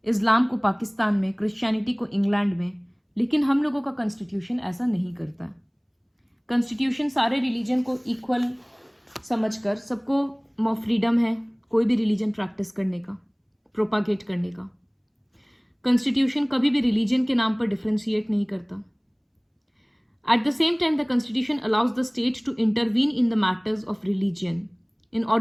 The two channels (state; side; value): identical; both; correlation 1.00